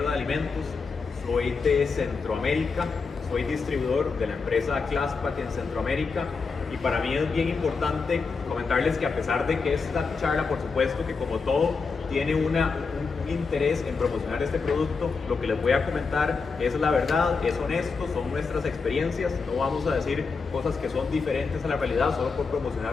de alimentos, soy de Centroamérica, soy distribuidor de la empresa Claspack en Centroamérica y para mí es bien importante comentarles que a pesar de que esta charla, por supuesto que como todo, tiene un interés en promocionar este producto, lo que les voy a comentar es la verdad, es honesto, son nuestras experiencias, no vamos a decir cosas que son diferentes a la realidad solo por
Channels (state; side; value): quieter; right; 4.8 dB